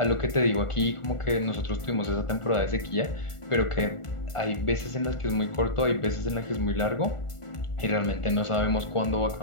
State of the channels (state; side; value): late; right; 1.4 ms